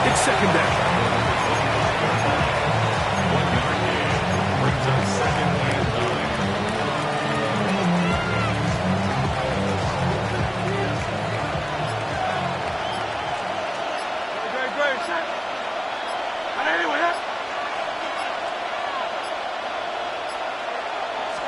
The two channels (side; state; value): both; identical; correlation 1.00